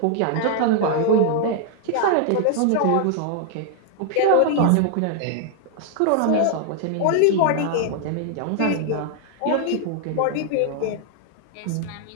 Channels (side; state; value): both; different; correlation 0.00